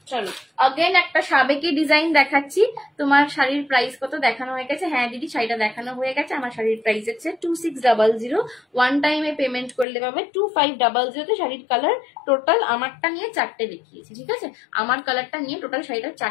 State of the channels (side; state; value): right; drops out; at 9.9 s